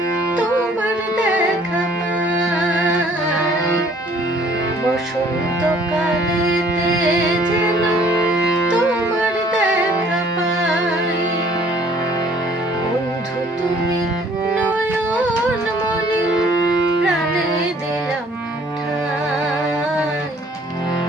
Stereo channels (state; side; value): normal; both; correlation 0.58